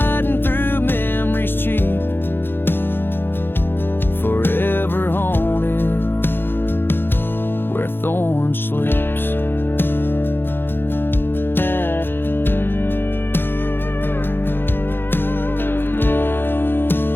through memories cheap, forever haunted where thorn sleeps.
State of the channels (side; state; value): right; late; 0.10 ms